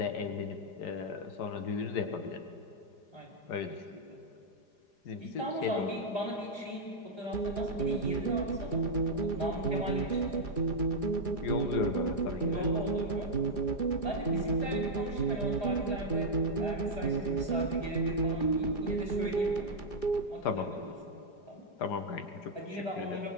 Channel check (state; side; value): late; right; 4.9 ms